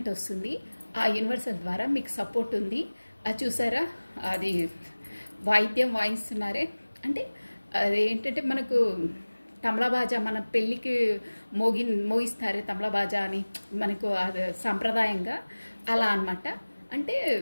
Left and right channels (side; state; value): both; inverted; correlation -1.00